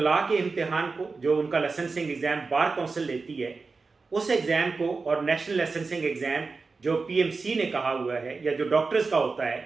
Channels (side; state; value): left; quieter; 4.2 dB